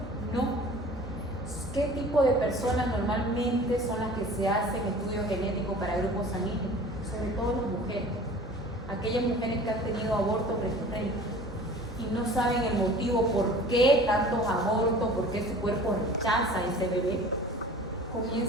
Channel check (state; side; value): normal; both; correlation 0.44